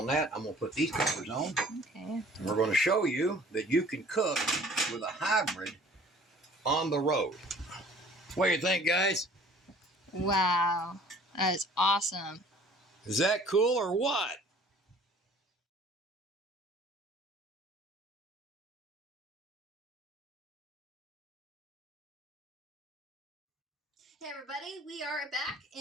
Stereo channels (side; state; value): both; normal; correlation 0.52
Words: that. I'm going to put these covers on. Okay. And we're going to show you that you can cook with a hybrid on the road. What do you think, guys? Wow. That is awesome. Is that cool or what? Hey everybody, we are back